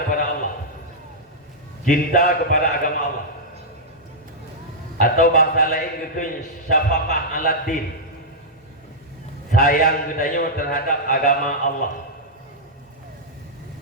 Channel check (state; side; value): normal; both; correlation -0.08